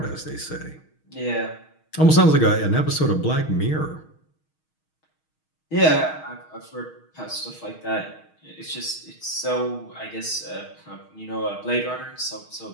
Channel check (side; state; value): right; late; 6.4 ms